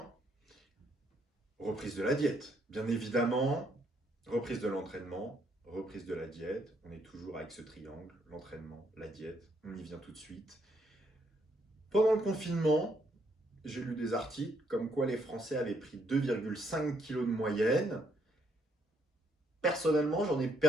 reprise de la diète. Bien évidemment, reprise de l'entraînement, reprise de la diète. On est toujours avec ce triangle, l'entraînement, la diète. On y vient tout de suite. Pendant le confinement, j'ai lu des articles comme quoi les Français avaient pris 2,5 kg de moyenne. Personnellement, j'en ai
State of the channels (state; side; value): normal; both; correlation 0.72